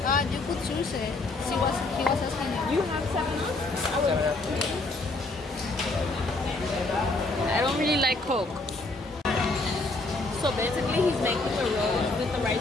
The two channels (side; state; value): right; quieter; 3.1 dB